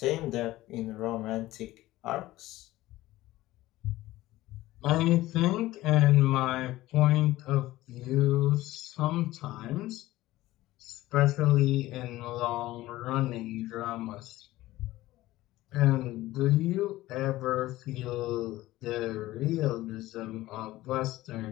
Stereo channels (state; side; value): quieter; right; 16.9 dB